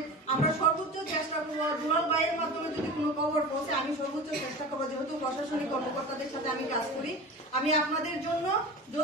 আমরা সর্বোচ্চ চেষ্টা করবো, দুলাল ভাইয়ের মাধ্যমে যদি কোনো খবর পৌঁছে আমি সর্বোচ্চ চেষ্টা করবো, যেহেতু প্রশাসনিক কর্মকর্তাদের সাথে আমি কাজ করি, আমি আপনাদের জন্য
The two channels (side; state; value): both; normal; correlation 0.32